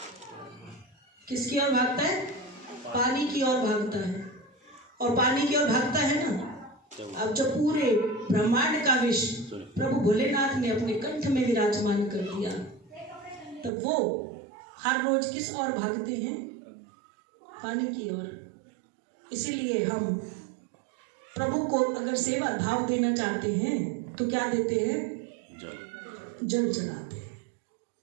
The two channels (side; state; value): left; drops out; at 13.7 s